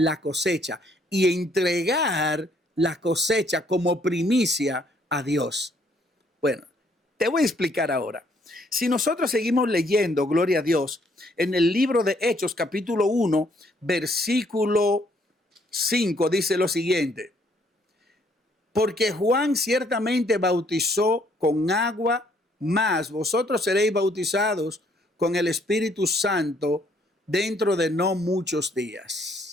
cosecha y entregar la cosecha como primicia a Dios. Bueno, te voy a explicar ahora. Si nosotros seguimos leyendo, gloria a Dios, en el libro de Hechos, capítulo 1, versículo 5, dice lo siguiente: porque Juan ciertamente bautizó con agua, mas vosotros seréis bautizados con el Espíritu Santo dentro de no muchos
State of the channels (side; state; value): both; normal; correlation 0.67